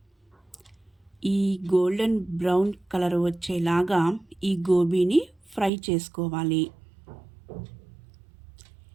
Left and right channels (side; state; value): left; drops out; at 5.7 s